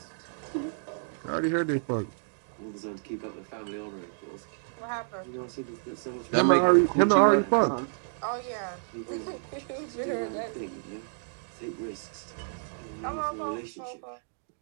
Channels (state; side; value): silent; left; digital silence